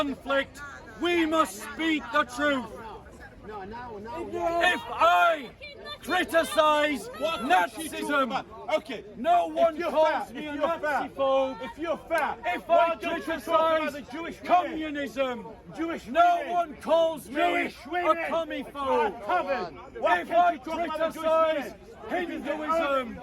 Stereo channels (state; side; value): identical; both; correlation 1.00